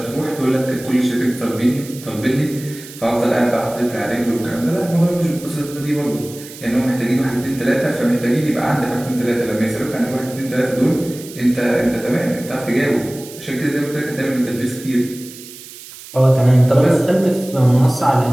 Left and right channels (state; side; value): noise; right; hiss, 16 dB below the sound